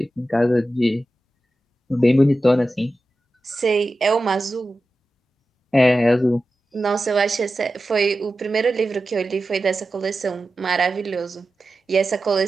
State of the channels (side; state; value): both; normal; correlation 0.93